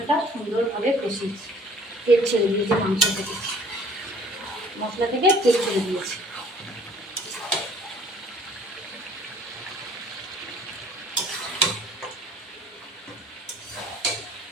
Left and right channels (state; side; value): normal; both; correlation 0.54